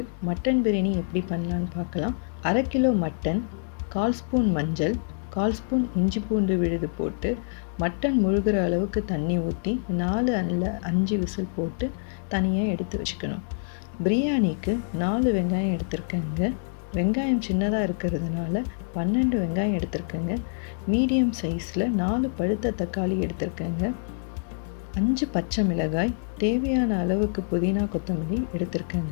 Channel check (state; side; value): silent; right; digital silence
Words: மட்டன் பிரியாணி எப்படி பண்ணலான்னு பார்க்கலாம். 1/2 கிலோ மட்டன், 1/4 ஸ்பூன் மஞ்சள், 1/4 ஸ்பூன் இஞ்சி பூண்டு விழுது போட்டு மட்டன் முழுகிற அளவுக்கு தண்ணி ஊற்றி 4 அல்ல 5 விசில் போட்டு தனியாக எடுத்து வச்சுக்கணும். பிரியாணிக்கு 4 வெங்காயம் எடுத்திருக்கேங்க. வெங்காயம் சின்னதாக இருக்கிறதுனால 12 வெங்காயம் எடுத்திருக்கேங்க. மீடியம் சைஸில் 4 பழுத்த தக்காளி எடுத்திருக்கேங்க. 5 பச்சை மிளகாய், தேவையான அளவுக்கு புதினா கொத்தமல்லி